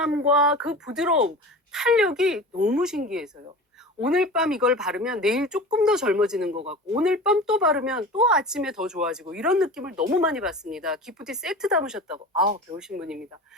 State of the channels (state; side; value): normal; both; correlation 0.35